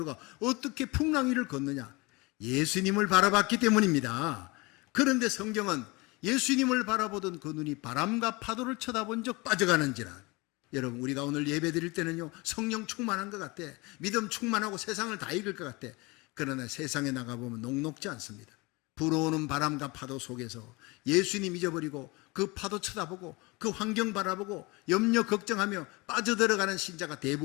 어떻게 풍랑 위를 걷느냐? 예수님을 바라봤기 때문입니다. 그런데 성경은 예수님을 바라보던 그 눈이 바람과 파도를 쳐다본 적 빠져가는지라. 여러분, 우리가 오늘 예배 드릴 때는요 성령 충만한 것 같아. 믿음 충만하고 세상을 다 이길 것 같아. 그러나 세상에 나가보면 녹록지 않습니다. 불어오는 바람과 파도 속에서 예수님 잊어버리고 그 파도 쳐다보고 그 환경 바라보고 염려 걱정하며 빠져들어가는 신자가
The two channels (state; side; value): quieter; right; 25.1 dB